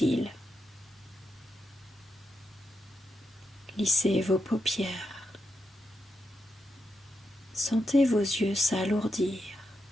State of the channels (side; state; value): both; normal; correlation 0.84